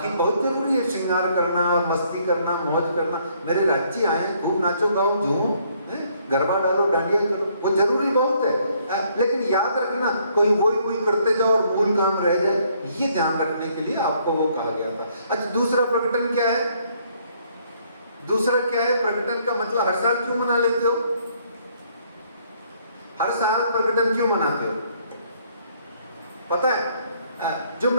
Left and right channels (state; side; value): inverted; both; correlation -0.67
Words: बहुत जरूरी है श्रृंगार करना, मस्ती करना, मौज करना। मेरे राज्य आए, खूब नाचो गाओ झूमो, गरबा डालो, डांडिया करो, वो जरूरी बहुत है। लेकिन याद रखना, कोई वही करते जाओ और मूल काम रह जाए, ये ध्यान रखने के लिए आपको वो कहा गया था। अच्छा, दूसरा प्रकटन क्या है? दूसरा क्या है प्रकटन का मतलब? हर साल क्यों मना लेते हो? हर साल प्रकटन क्यों मनाते हो? पता है, जो